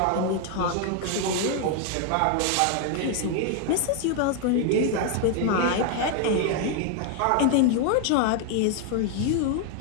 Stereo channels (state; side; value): different; both; correlation 0.00